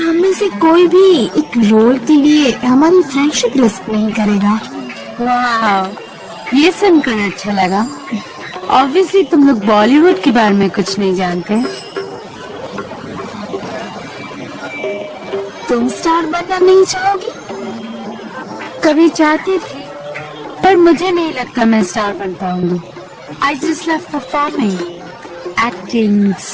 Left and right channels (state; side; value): identical; both; correlation 1.00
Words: में से कोई भी एक रोल के लिए हमारी फ्रेंडशिप रिस्क नहीं करेगा। वाह, ये सुनकर अच्छा लगा। ऑब्वियसली तुम लोग बॉलीवुड के बारे में कुछ नहीं जानते। तुम स्टार बनना नहीं चाहोगी? कभी चाहती थी, पर मुझे नहीं लगता मैं स्टार बन पाऊंगी। I just love performing, acting,